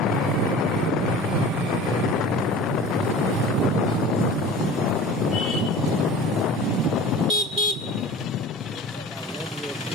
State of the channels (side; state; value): both; normal; correlation 0.39